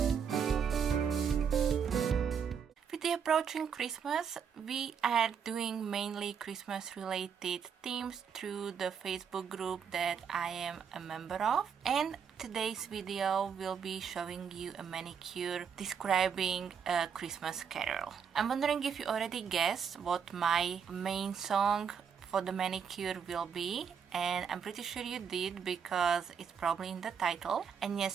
Approaching Christmas, we are doing mainly Christmas related themes through the Facebook group that I am a member of, and today's video will be showing you a manicure describing a Christmas carol. I'm wondering if you already guessed what my main song for the manicure will be, and I'm pretty sure you did because it's probably in the title. And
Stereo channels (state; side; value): quieter; left; 7.1 dB